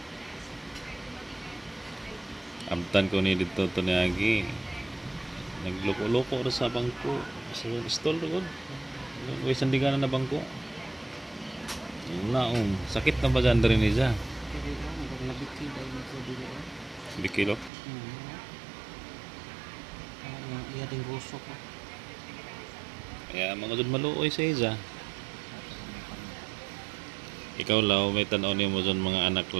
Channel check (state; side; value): drops out; left; at 17.7 s